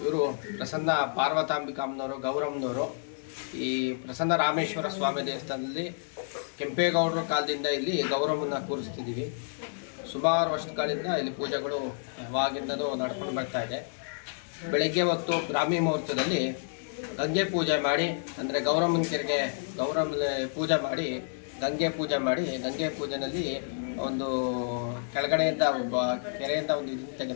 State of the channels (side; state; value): right; silent; 58 dB below the other